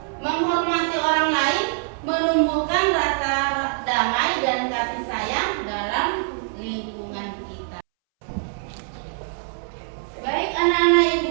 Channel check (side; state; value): left; silent; 63 dB below the other